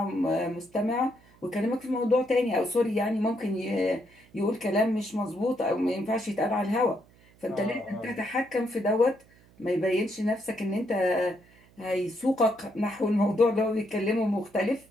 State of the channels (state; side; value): noise; right; hum, 28 dB below the sound